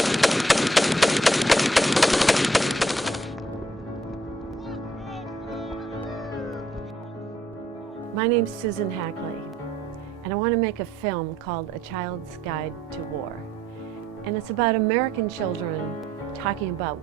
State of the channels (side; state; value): both; normal; correlation 0.66